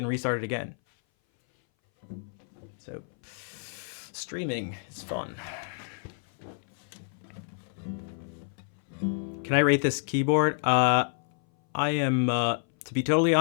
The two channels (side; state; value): right; silent; 57 dB below the other